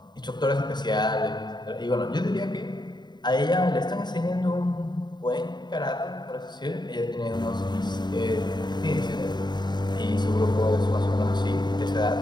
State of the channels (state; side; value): late; right; 0.21 ms